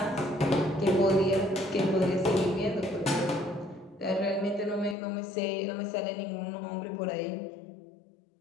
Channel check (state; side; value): drops out; right; at 5.0 s